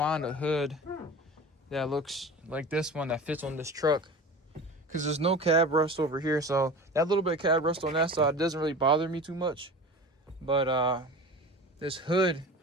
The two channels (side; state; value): both; normal; correlation 0.35